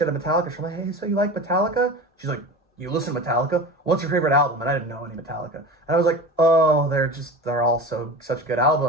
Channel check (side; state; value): both; normal; correlation 0.32